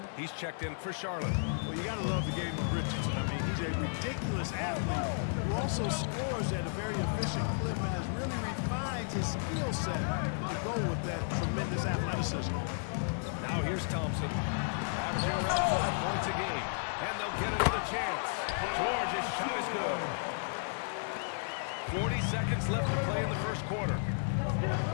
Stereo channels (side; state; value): right; silent; digital silence